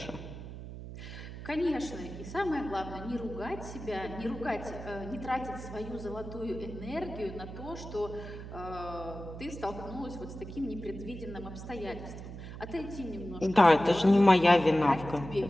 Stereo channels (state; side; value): noise; right; hum, 11 dB below the sound